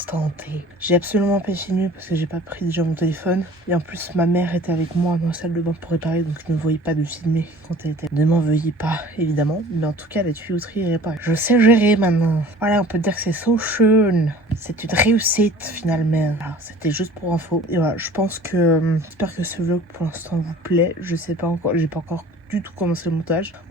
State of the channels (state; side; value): normal; both; correlation 0.47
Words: T. J'ai absolument pas filmé parce que j'ai pas pris déjà mon téléphone. Et en plus, ma mère était avec moi dans la salle de bain pour réparer, donc je ne voyais pas de filmer quand elle était. Ne m'en veuillez pas, évidemment. Mais en tout cas, la tuyauterie est réparée. Je sais gérer maintenant. Voilà, on peut dire que c'est so schön. C'est une réussite finalement. Voilà, c'était juste pour info. Et voilà, je pense que... j'espère que ce vlog pour l'instant vous plaît. Je sais pas encore, j'ai pas encore du tout commencer le montage.